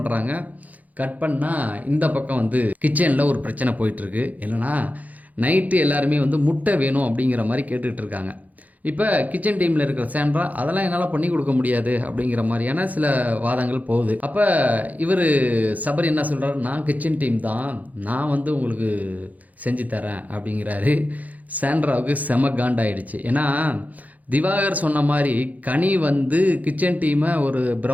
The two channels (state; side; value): late; left; 0.078 ms